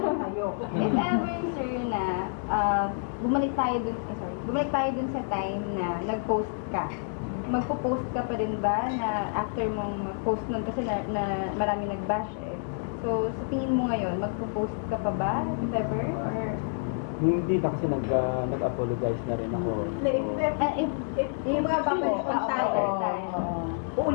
If ever, sir, na bumalik tayo dun sa time na nag-post ka, magpo-post ka pa rin ba na after mong mag-post nun kasi na marami nag-bash eh. So, sa tingin mo ngayon, magpo-post ka pa ba if ever? Or Hindi na kasi nag-apologize na rin ako. If mga babalik ang tayo,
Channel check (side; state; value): right; silent; digital silence